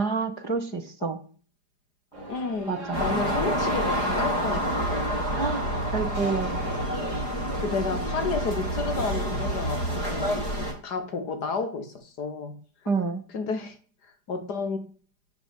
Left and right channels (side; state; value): right; late; 4.9 ms